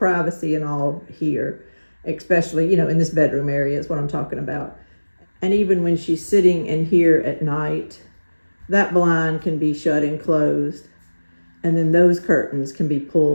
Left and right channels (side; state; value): both; inverted; correlation -1.00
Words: and all here, especially, in this bedroom area is what I'm talking about. And even when she's sitting in here at night, that blind can be shut and closed. And then those curtains can be